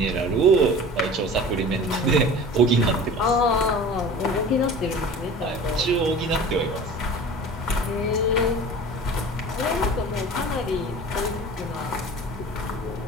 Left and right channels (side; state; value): both; normal; correlation 0.40